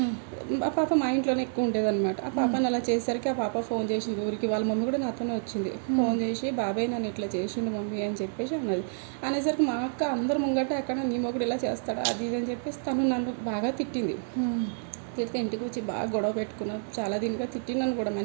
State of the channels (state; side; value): silent; left; 59 dB below the other